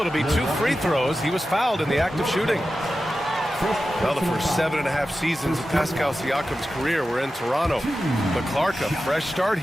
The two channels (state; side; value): normal; both; correlation 0.93